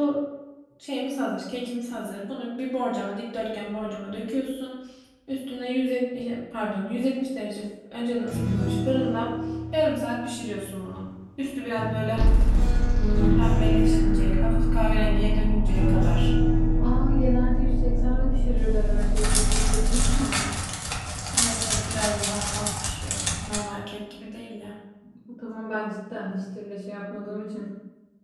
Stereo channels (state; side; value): identical; both; correlation 1.00